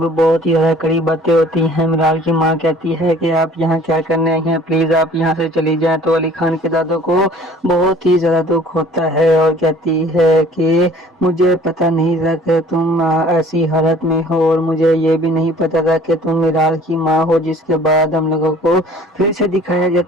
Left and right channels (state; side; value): normal; both; correlation 0.52